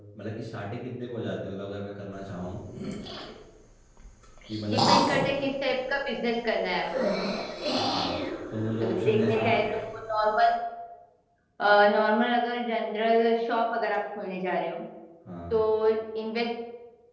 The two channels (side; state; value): both; identical; correlation 1.00